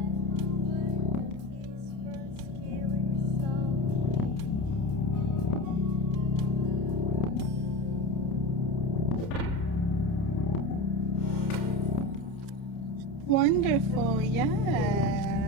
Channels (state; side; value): late; right; 30 ms